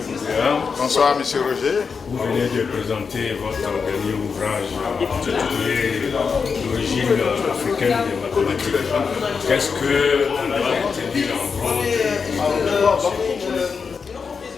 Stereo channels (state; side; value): quieter; right; 5.6 dB